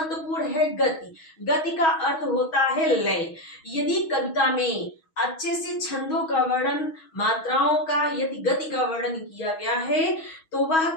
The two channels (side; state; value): right; late; 6.2 ms